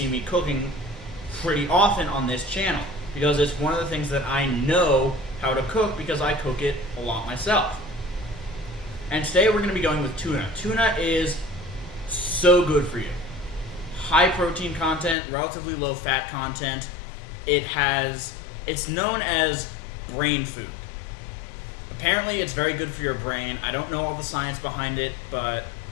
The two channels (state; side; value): drops out; right; at 15.2 s